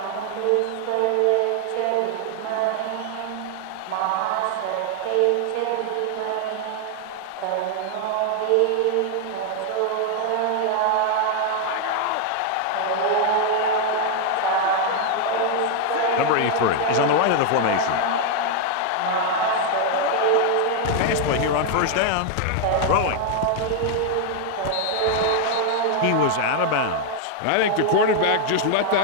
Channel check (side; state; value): both; different; correlation 0.00